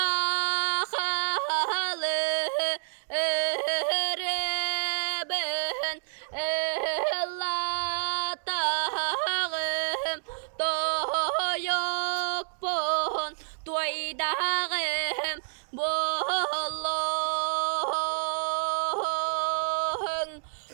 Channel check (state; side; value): silent; left; digital silence